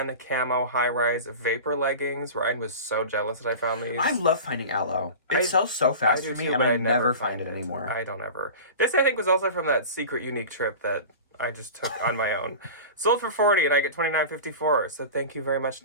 camo high-rise vapor leggings. Ryan was so jealous that I found these. I love finding aloe. It sells so fast for me and I never find it anymore. I don't ever. This I think was also from that secret unique trip that I just took on my own. Sold for $40 and I get $29.54. So thank you very much,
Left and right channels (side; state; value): both; inverted; correlation -0.33